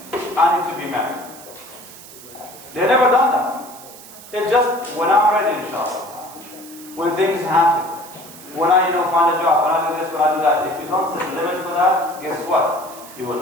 I need to be married. They've never done that. It's just when I'm ready, inshallah. When things happen. When I find a job, when I do this, when I do that. If you don't set limits for that, guess what? You will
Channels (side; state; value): right; noise; hiss, 18 dB below the sound